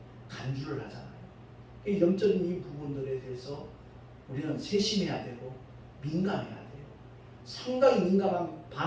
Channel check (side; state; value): both; identical; correlation 1.00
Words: 간주를 하잖아요. 이 영적인 이 부분들에 대해서 우리는 세심해야 되고 민감해야 돼요. 상당히 민감한